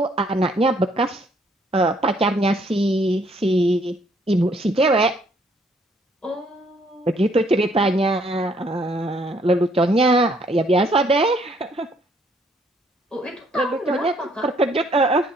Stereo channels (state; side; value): normal; both; correlation 0.66